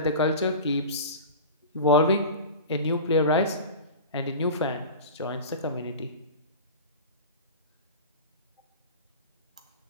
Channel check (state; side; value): inverted; both; correlation -0.32